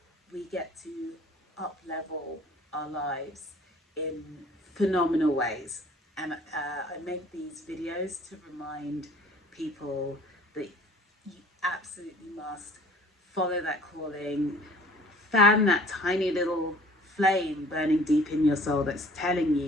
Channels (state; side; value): normal; both; correlation 0.52